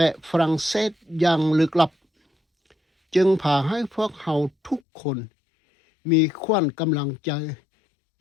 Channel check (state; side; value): drops out; right; at 4.8 s